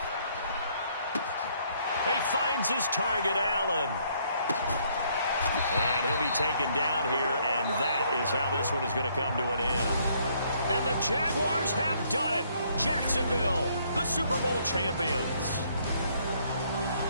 He finds his target, Allen. And he'll be taken down here, and that is how this one is going to come to an end. And the Jaguars have done it. Jacksonville, the Super Bowl champions.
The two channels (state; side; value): inverted; both; correlation -0.67